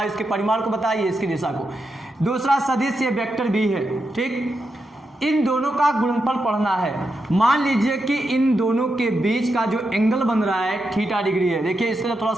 इसके परिमाण को बताइए, इसकी दिशा को। दूसरा सदिश ये वेक्टर बी है, ठीक। इन दोनों का गुणनफल पढ़ना है। मान लीजिए कि इन दोनों के बीच का जो एंगल बन रहा है थीटा डिग्री है। देखिए, इसको थोड़ा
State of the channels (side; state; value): both; normal; correlation 0.86